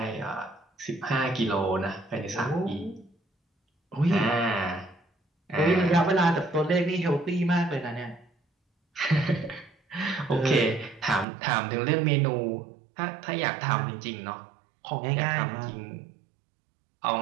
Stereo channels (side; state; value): left; drops out; at 11.2 s